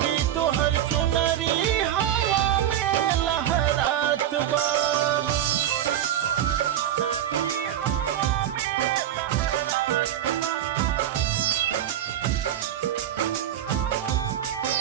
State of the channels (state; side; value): quieter; left; 11.1 dB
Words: तुहर चुनरी हवा में लहरात बा